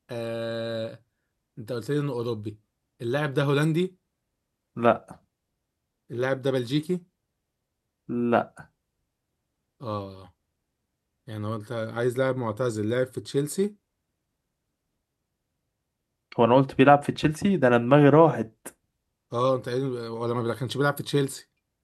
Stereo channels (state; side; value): identical; both; correlation 1.00